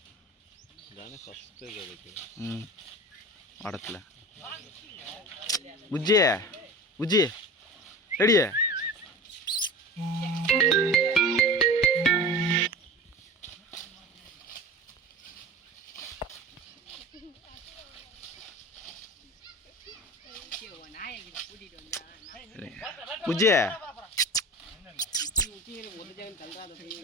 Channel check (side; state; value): both; normal; correlation 0.35